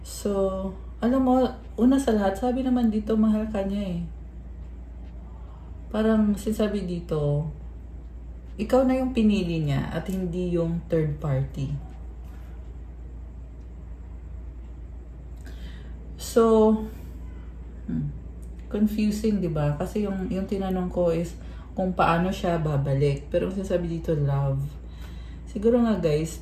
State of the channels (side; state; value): both; identical; correlation 1.00